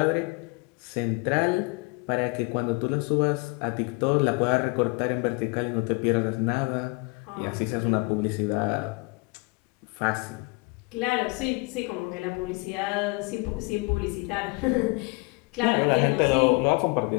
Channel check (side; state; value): right; quieter; 28.4 dB